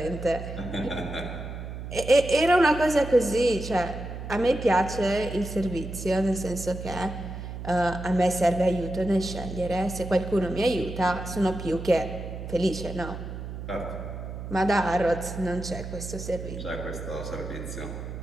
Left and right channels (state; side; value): noise; right; hum, 8 dB below the sound